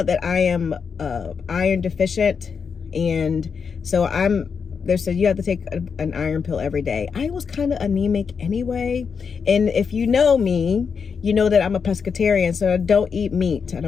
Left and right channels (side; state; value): right; quieter; 6.0 dB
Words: that I am iron deficient, and so they said you have to take an iron pill every day. I was kind of anemic anyway. And if you know me, you know that I'm a pescatarian, so I don't eat meat. I